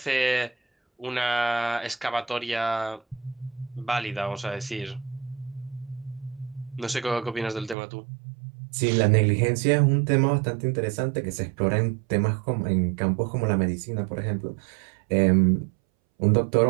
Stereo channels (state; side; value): drops out; left; at 7.8 s